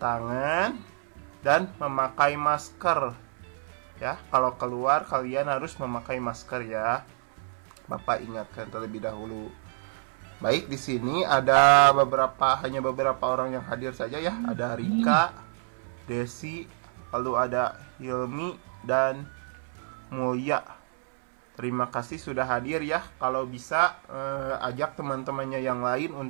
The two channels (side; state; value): left; silent; 59 dB below the other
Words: dan memakai masker. Ya, kalau keluar kalian harus memakai masker ya. Bapak ingatkan terlebih dahulu. Baik, di sini ada hanya beberapa orang yang hadir saja ya. Ada Rika, Desi, lalu ada Hilmi dan Mulia. Terima kasih sudah hadir ya. Kalau bisa ajak teman-temannya yang lain